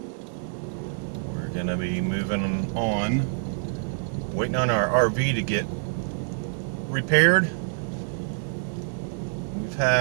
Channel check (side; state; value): left; silent; digital silence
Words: We're gonna be moving on, waiting on our RV to get repaired. We've